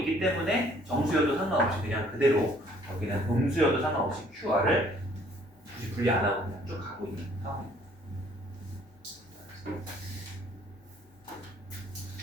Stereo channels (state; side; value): normal; both; correlation 0.60